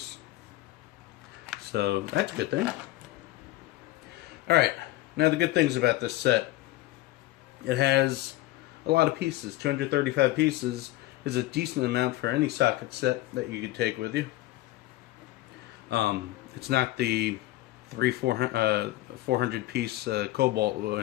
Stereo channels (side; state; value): right; quieter; 16.9 dB